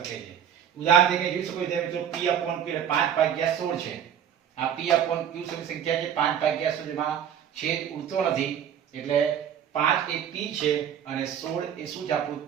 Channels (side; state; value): left; quieter; 9.0 dB